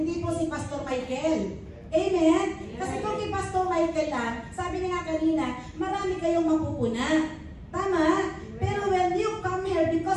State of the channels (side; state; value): both; identical; correlation 1.00